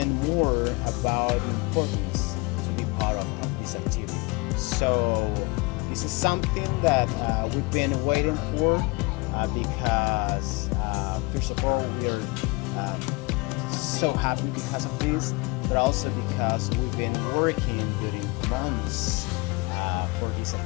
more about the importance to be part of this activity. So this is something that we've been waiting for because first of all, we're so happy because of this, but also because we've been working during months for this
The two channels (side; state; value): right; quieter; 25.7 dB